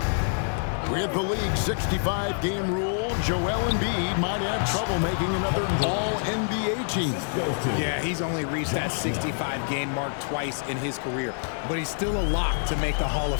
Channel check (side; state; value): right; silent; 61 dB below the other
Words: With the league's 65-game rule, Joel Embiid might have trouble making another All-NBA team. Yeah, he's only reached that 65-game mark twice in his career. But he's still a lock to make the Hall